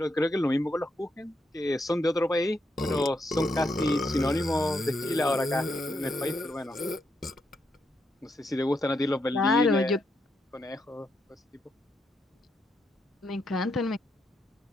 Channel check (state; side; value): normal; both; correlation 0.80